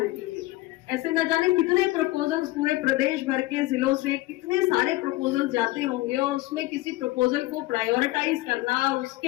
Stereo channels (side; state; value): right; quieter; 18.8 dB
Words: है। ऐसे न जाने कितने प्रपोजल्स पूरे प्रदेश भर के जिलों से कितने सारे प्रपोजल्स जाते होंगे, और उसमें किसी प्रपोजल को प्रायोरिटाइज करना,